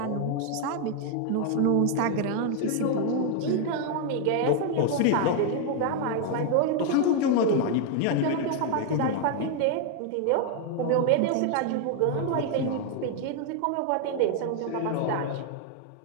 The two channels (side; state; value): both; different; correlation 0.00